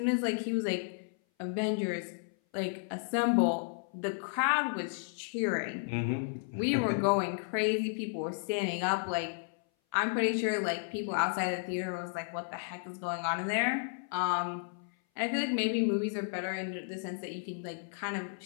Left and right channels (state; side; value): silent; right; 56 dB below the other